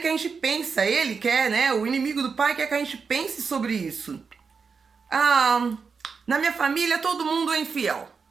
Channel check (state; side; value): quieter; left; 5.4 dB